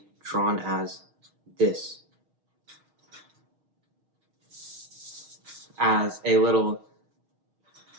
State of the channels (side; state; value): left; late; 6.4 ms